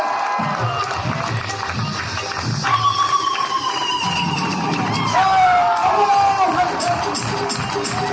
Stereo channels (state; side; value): identical; both; correlation 1.00